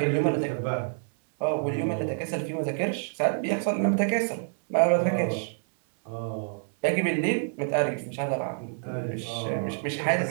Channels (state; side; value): silent; left; 60 dB below the other